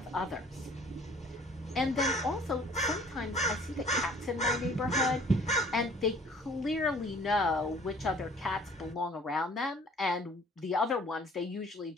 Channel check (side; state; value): both; normal; correlation 0.53